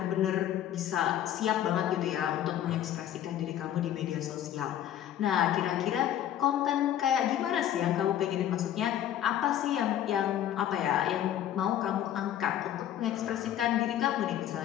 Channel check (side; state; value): right; quieter; 11.2 dB